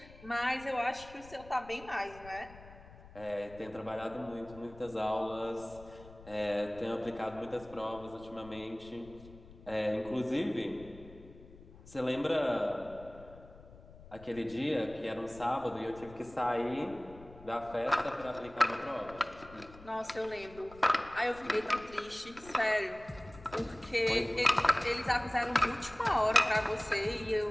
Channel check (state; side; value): noise; left; rumble, 19 dB below the sound